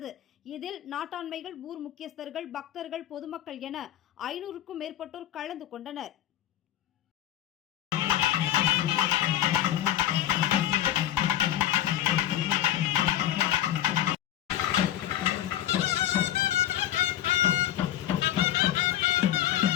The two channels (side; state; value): right; quieter; 12.5 dB